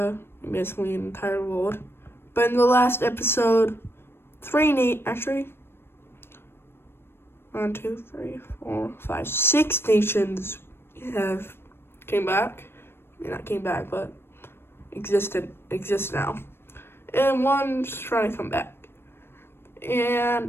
basically the entire world. But in the last episode, 6 nations came back. Not came back, but exist now, and one's trying to come back.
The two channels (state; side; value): late; right; 0.11 ms